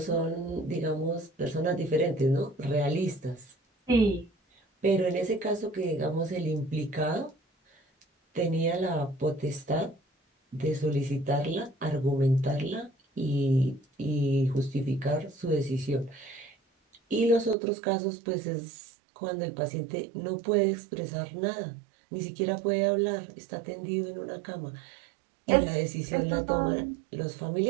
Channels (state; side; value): drops out; left; at 17.6 s